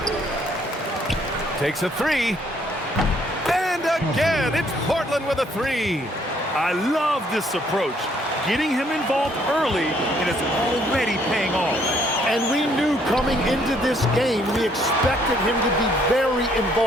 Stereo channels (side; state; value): both; normal; correlation 0.66